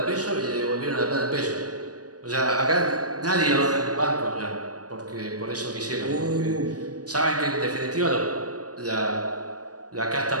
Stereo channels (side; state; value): left; late; 0.68 ms